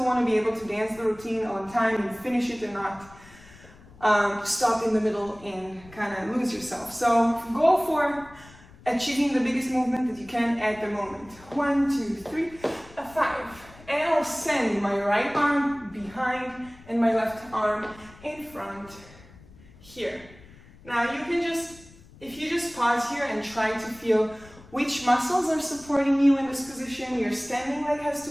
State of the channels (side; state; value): left; noise; rumble, 23 dB below the sound